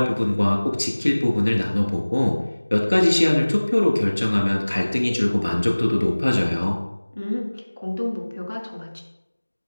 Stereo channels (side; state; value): both; inverted; correlation -1.00